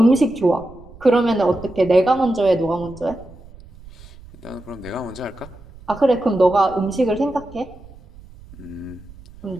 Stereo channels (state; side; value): noise; right; rumble, 20 dB below the sound